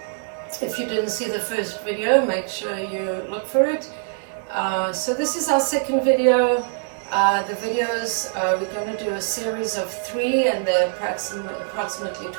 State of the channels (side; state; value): left; silent; 63 dB below the other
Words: If you didn't see the first video, make sure you look for it. So this is our second video. The videos, we're going to do a series of 3, and they're approximately